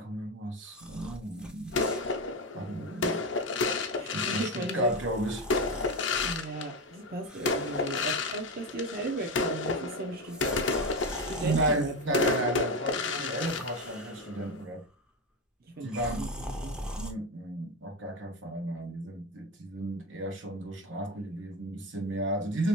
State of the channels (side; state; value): both; normal; correlation 0.16